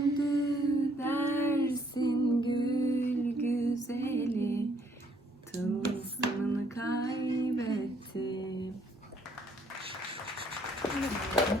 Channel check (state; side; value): normal; both; correlation 0.66